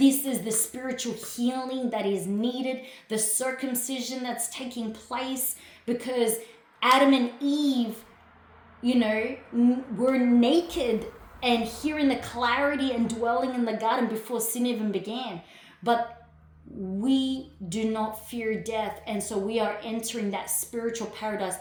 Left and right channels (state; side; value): identical; both; correlation 1.00